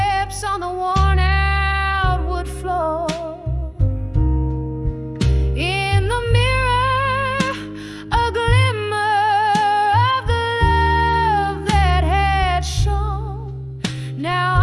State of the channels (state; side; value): identical; both; correlation 1.00